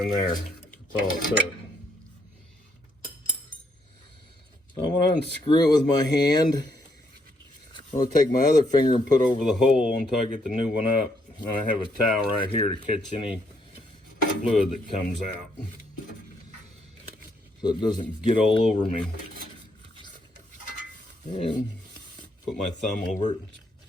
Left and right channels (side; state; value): both; normal; correlation 0.73